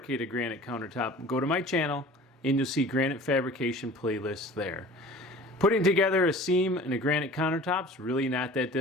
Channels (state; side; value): normal; both; correlation 0.43